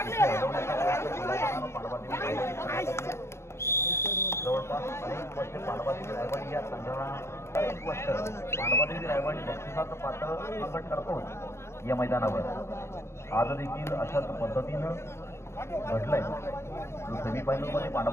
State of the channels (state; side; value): late; right; 0.13 ms